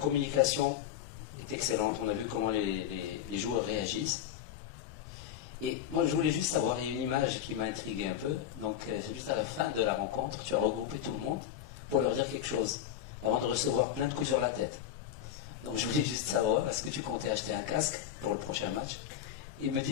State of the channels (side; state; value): right; quieter; 10.3 dB